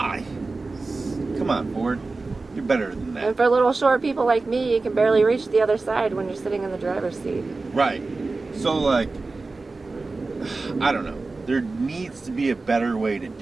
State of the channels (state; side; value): quieter; left; 3.6 dB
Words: Come on, Ford. You're better than that. And for little short people like me, you can barely reach the other side when you're sitting in the driver's seat. Right. So like, I don't know. There needs to be a better way to